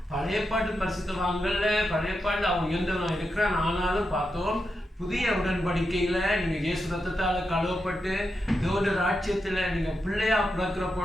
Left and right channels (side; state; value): both; normal; correlation 0.87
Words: பழைய பாட்டு பரிசுத்தவான்கள்ல பழைய பாட்டு அவன் உயர்ந்தவனா இருக்கிறான். ஆனாலும் பார்த்தோம், புதிய உடன்படிக்கையில நீங்க இயேசு ரத்தத்தால கழுவப்பட்டு தேவனுடைய ராஜ்யத்துல நீங்க பிள்ளையா பிறக்கிற